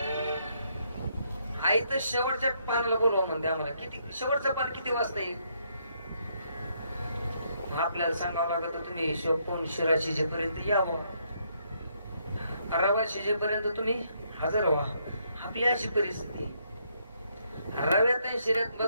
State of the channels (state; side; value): inverted; both; correlation -0.73